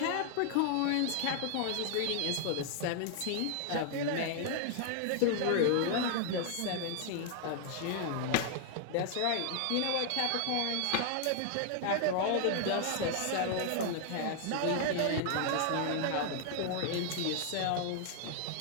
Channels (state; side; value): different; both; correlation 0.00